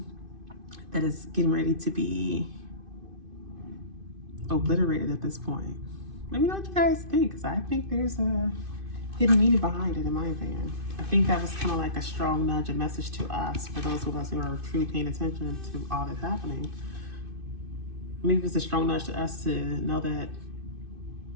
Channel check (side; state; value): left; late; 2.5 ms